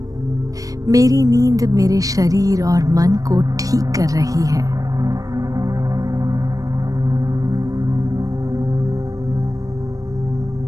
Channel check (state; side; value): late; left; 0.17 ms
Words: मेरी नींद मेरे शरीर और मन को ठीक कर रही है।